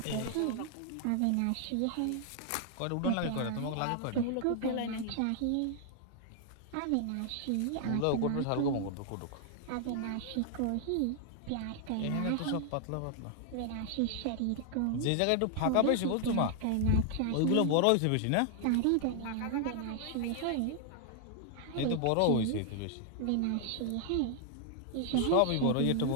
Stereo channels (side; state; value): both; different; correlation 0.00